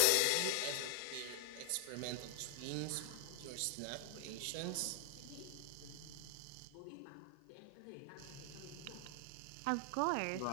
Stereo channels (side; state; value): both; different; correlation 0.00